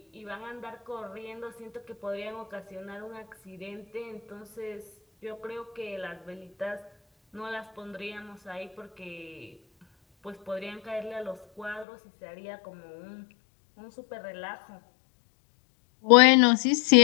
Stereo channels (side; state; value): right; drops out; at 11.9 s